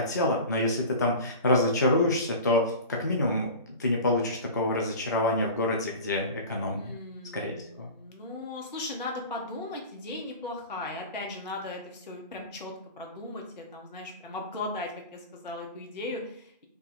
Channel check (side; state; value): both; inverted; correlation -0.34